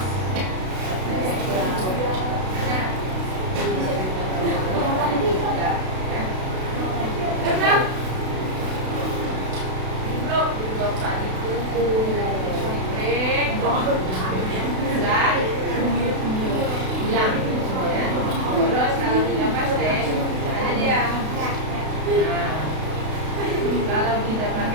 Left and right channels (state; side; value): late; left; 32 ms